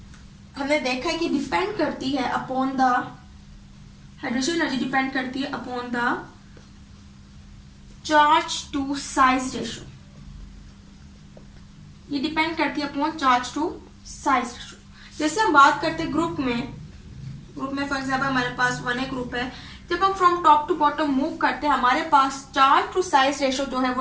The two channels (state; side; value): identical; both; correlation 1.00